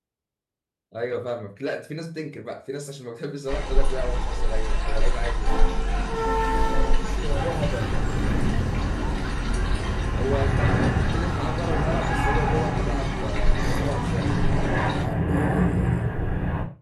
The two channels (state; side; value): identical; both; correlation 1.00